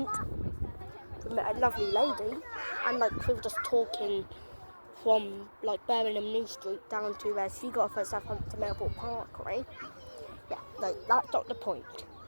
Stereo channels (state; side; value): inverted; both; correlation -1.00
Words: we met a lovely lady, and we were just talking from Birmingham New Street down to where she got off at Southampton Airport Parkway. Yeah, that's not the point.